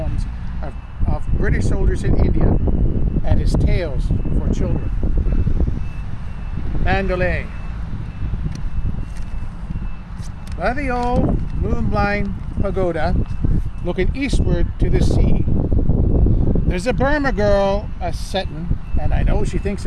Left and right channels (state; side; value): identical; both; correlation 1.00